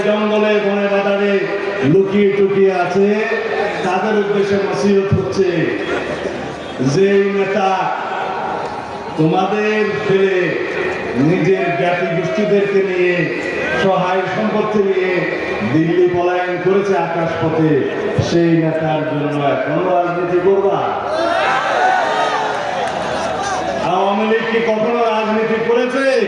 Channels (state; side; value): identical; both; correlation 1.00